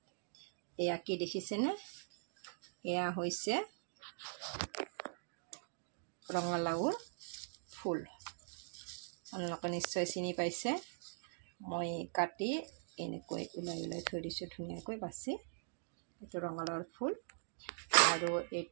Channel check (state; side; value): silent; left; digital silence